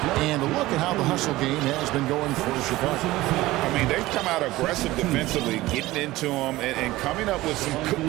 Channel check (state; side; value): quieter; left; 17.9 dB